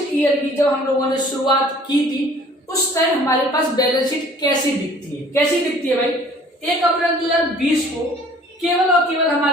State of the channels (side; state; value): both; normal; correlation 0.53